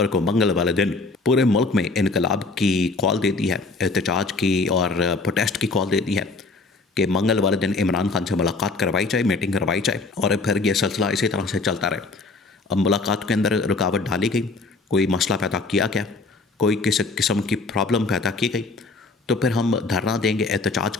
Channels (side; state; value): right; quieter; 3.7 dB